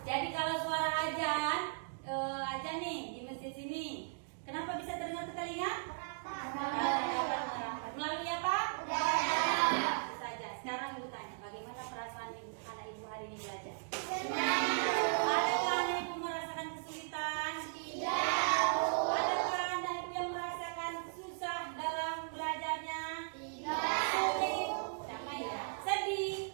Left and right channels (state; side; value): silent; left; digital silence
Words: Jadi kalau suara ajan nih di masjid sini, kenapa bisa terdengar ke telinga? Melalui apa? Itu saja. Sekarang ibu tanya, bagaimana perasaan anak ibu hari ini belajar? Adakah anak ibu merasakan kesulitan? Tidak. Adakah anak ibu yang merasakan susah dalam belajarnya? Tidak. Sulit? Sama ya? Sedih?